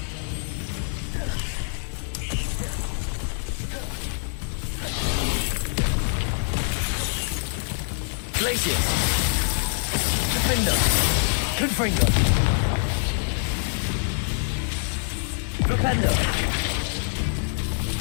Glacius! Defender! Confringo! Flipendo!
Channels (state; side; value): silent; right; 62 dB below the other